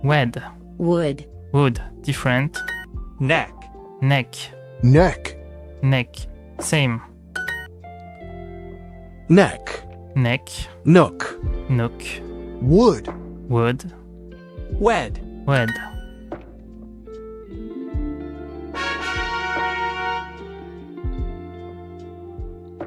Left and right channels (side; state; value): both; identical; correlation 1.00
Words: Wed. Wood. Wood. Different. Neck. Neck. Neck. Neck. Same. Neck. Neck. Nook. Nook. Wood. Wood. Wed. Wed.